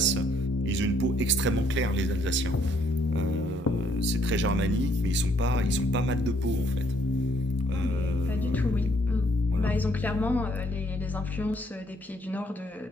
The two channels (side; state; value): both; normal; correlation 0.67